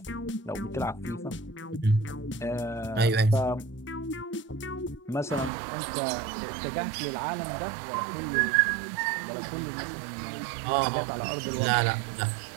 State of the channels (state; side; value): drops out; left; at 5.5 s